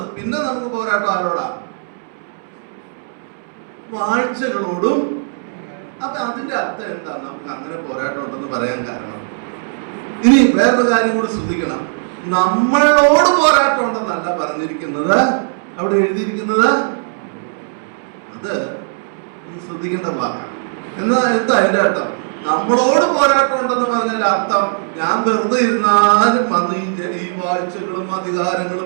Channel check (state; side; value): silent; left; 67 dB below the other